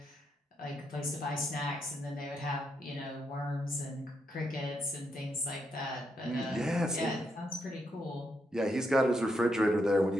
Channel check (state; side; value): normal; both; correlation 0.80